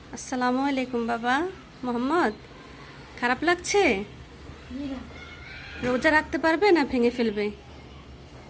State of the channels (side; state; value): both; identical; correlation 1.00